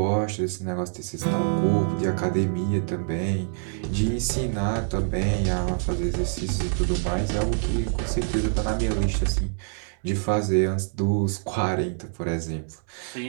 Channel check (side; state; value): left; silent; digital silence